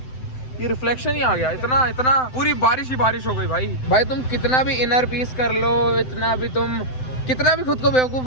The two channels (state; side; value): late; right; 7.8 ms